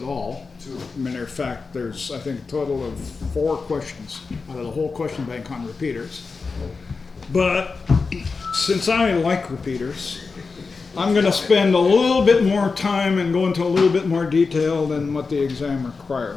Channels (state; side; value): quieter; right; 4.5 dB